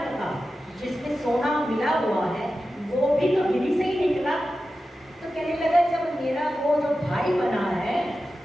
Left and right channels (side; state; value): both; normal; correlation 0.93